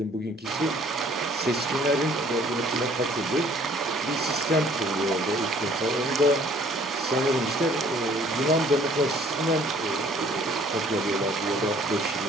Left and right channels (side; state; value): both; normal; correlation 0.57